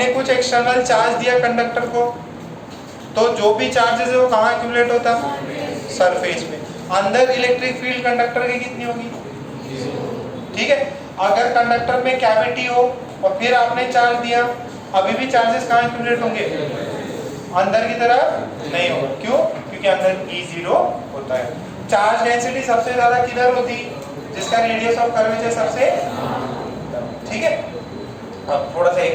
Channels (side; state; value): both; identical; correlation 1.00